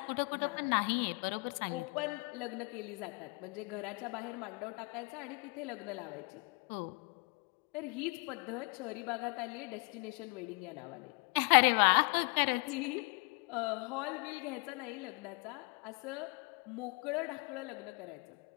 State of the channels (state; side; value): quieter; right; 31.0 dB